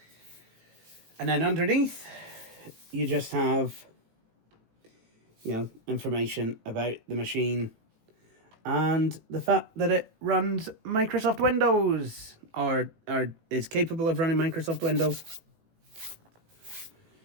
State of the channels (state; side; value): late; left; 18 ms